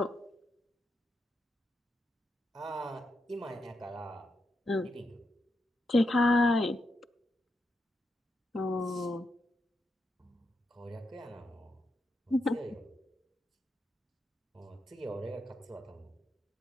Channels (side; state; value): both; normal; correlation 0.84